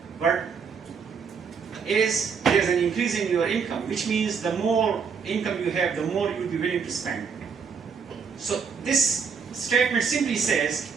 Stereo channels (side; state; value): left; quieter; 6.0 dB